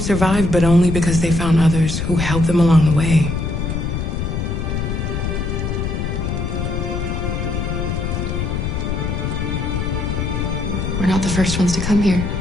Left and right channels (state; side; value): noise; left; rumble, 2 dB below the sound